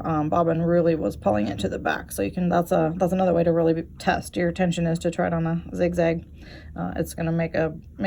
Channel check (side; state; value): both; identical; correlation 1.00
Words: bobbin really was pulling it to the back. So you can, that's another way to really test your tension, is to try it on a zigzag. It's gonna make